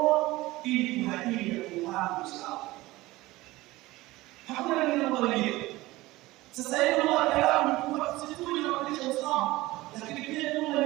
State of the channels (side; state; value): left; quieter; 19.0 dB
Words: ili kuhadili kufahamu sawa. Hakuna neno mwingine. Sasa hivi ndio kalamu kwa sisi tunafundisha usawa, lakini pia